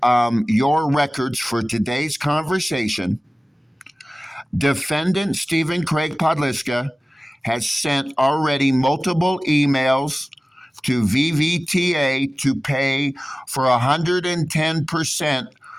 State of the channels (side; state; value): both; normal; correlation 0.97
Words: your records for today's conversation? Defendant Stephen Craig Podliska has sent already multiple emails to VVTA to pay for 110%